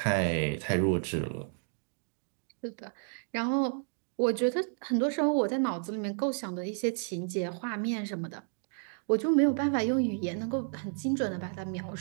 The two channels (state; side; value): silent; left; 57 dB below the other